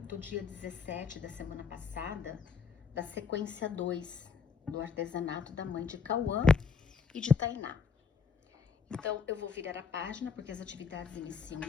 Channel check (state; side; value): quieter; right; 5.8 dB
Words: do dia 17 da semana passada, da sequência 2 do artesanato da mãe de Cauã e de Tainá. Então, eu vou virar a página, porque as atividades iniciam